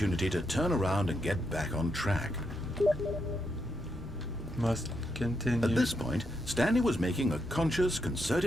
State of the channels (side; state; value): both; normal; correlation 0.81